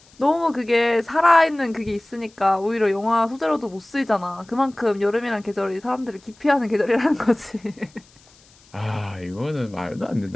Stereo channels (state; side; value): noise; left; hiss, 29 dB below the sound